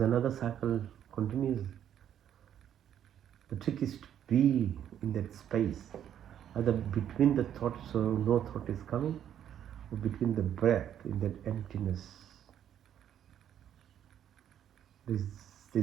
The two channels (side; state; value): left; quieter; 10.0 dB